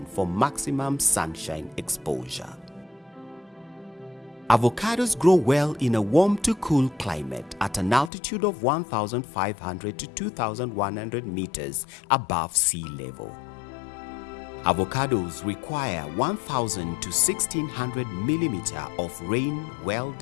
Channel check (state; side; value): drops out; right; at 8.1 s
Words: for maximum sunshine exposure. Avocados grow well in a warm to cool climate at an altitude of 1,500 to 2,100 meters above sea level. Avocados require 1,000 to 1,600 millimeters of rain well